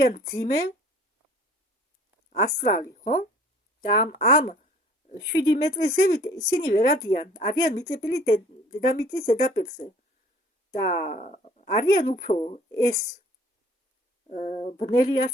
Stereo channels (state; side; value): normal; both; correlation 0.52